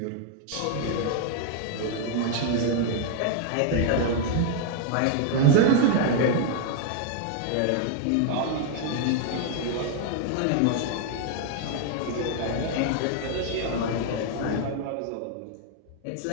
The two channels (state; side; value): different; both; correlation 0.00